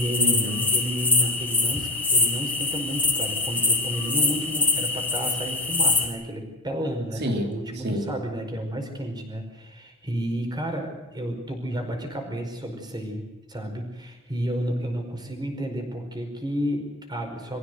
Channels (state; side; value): normal; both; correlation 0.33